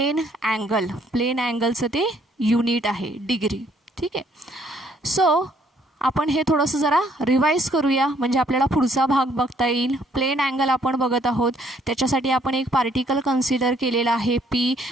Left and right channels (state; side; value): normal; both; correlation 0.66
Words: angle. Plane अँगलचं ते युनिट आहे डिग्री. ठीक आहे. सो आपण हे थोडंसं जरा रिवाईज करूया म्हणजे आपल्याला पुढचा भाग बघता येईल. प्लेन अँगल आपण बघत आहोत. त्याच्यासाठी आपण एक पार्टिकल कन्सिडर केलेला आहे P,